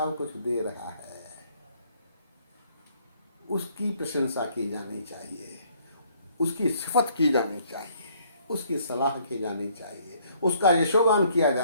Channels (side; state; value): both; inverted; correlation -0.64